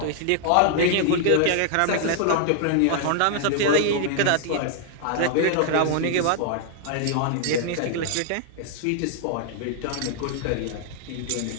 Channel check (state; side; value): different; both; correlation 0.00